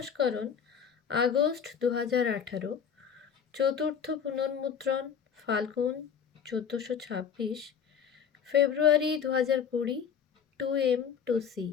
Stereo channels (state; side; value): quieter; right; 7.3 dB